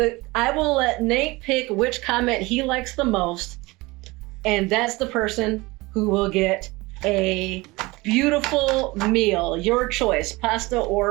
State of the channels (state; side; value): quieter; left; 22.5 dB